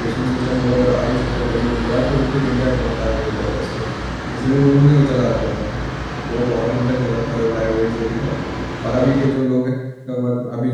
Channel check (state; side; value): identical; both; correlation 1.00